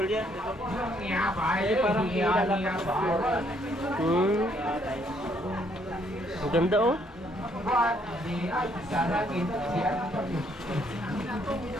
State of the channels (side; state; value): both; normal; correlation 0.69